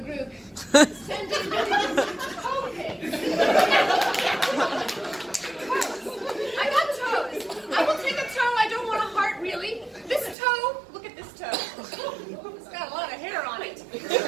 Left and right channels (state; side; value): drops out; left; at 10.4 s